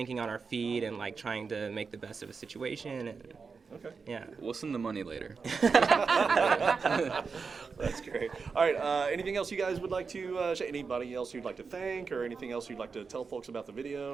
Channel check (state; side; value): quieter; left; 5.1 dB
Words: on our feet and, like, trying to make the best of a situation. And, okay. Yeah. We'll send the money later. That's great. All right. Anything else you guys would like to share? Anybody else you'd like to thank, or anything else you'd like to tell folks about the